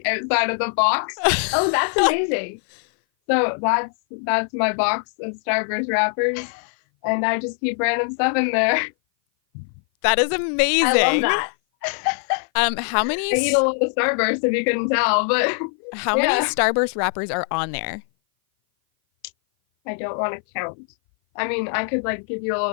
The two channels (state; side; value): silent; right; 57 dB below the other